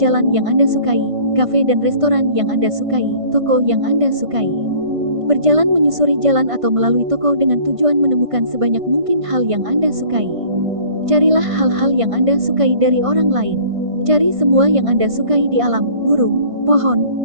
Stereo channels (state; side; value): late; left; 1.5 ms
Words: yang Anda sukai, kafe dan restoran yang Anda sukai, toko yang Anda sukai. Berjalan menyusuri jalan atau melalui toko dengan tujuan menemukan sebanyak mungkin hal yang Anda sukai. Carilah hal-hal yang Anda sukai dari orang lain. Cari semua yang Anda sukai di alam, burung,